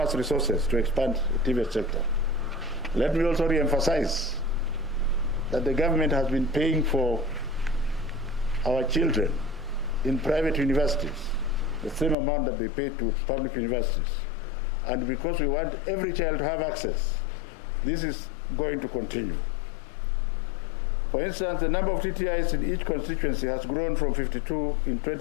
resources to expand the TVET sector. Let me also re-emphasize that the government has been paying for our children in private universities the same amount that they pay to public universities. And because we want every child to have access, this is going to continue. For instance, the number of TTIs in each constituency has grown from 52 in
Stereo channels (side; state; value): right; drops out; at 12.2 s